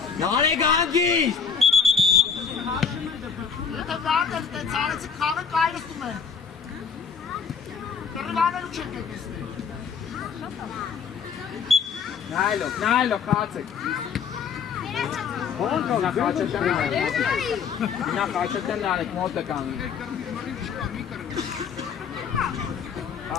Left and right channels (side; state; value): right; quieter; 6.5 dB